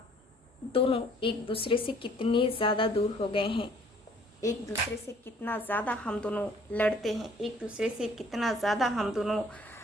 दोनों एक दूसरे से कितने ज़्यादा दूर हो गए हैं। एक दूसरे से कितना ज़्यादा हम दोनों लड़ते हैं। एक दूसरे से कितना ज़्यादा हम दोनों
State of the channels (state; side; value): normal; both; correlation 0.58